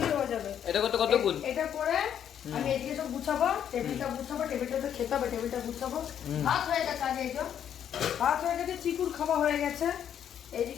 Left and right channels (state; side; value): quieter; right; 9.3 dB